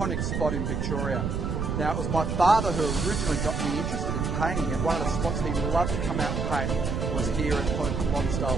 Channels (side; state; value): right; noise; rumble, 1 dB below the sound